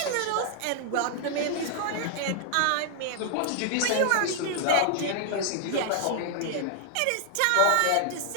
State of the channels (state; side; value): different; both; correlation 0.00